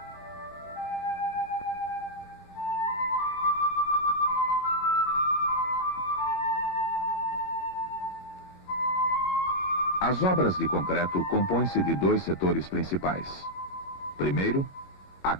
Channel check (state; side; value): late; right; 11 ms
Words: As obras de concreto compõem-se de 2 setores principais. Primeiro, a